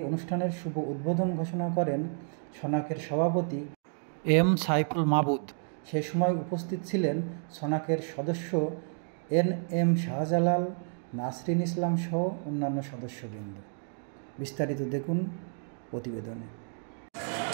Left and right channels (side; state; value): left; silent; 57 dB below the other